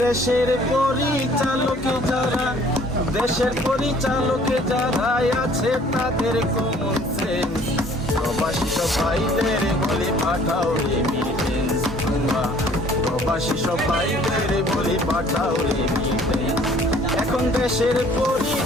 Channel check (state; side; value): normal; both; correlation 0.55